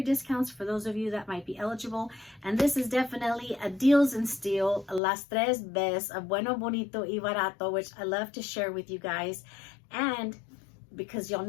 discounts for those of you that might be eligible. And this is definitely a deals and steal, las tres bes of bueno, bonito y barato, which I love to share with you guys. And because y'all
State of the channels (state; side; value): drops out; right; at 5.0 s